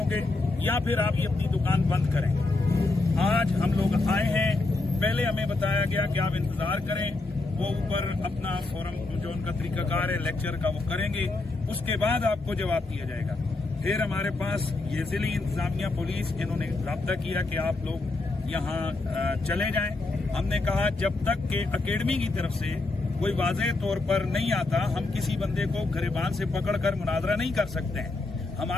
या फिर आप ये अपनी दुकान बंद करें। आज हम लोग आए हैं, पहले हमें बताया गया कि आप इंतजार करें, वो ऊपर अपना फोरम जो उनका तरीकाकार है लेक्चर का वो करेंगे, उसके बाद आपको जवाब दिया जाएगा। फिर हमारे पास ये जिली इंतजामिया पुलिस, इन्होंने राब्ता किया कि आप लोग यहाँ चले जाएं। हमने कहा जब तक के अकेडमी की तरफ से कोई वाज़ेह तौर पर नहीं आता, हम किसी बंदे को गिरबान से पकड़कर मुनाजरा नहीं कर सकते हैं।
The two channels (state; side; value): quieter; right; 3.2 dB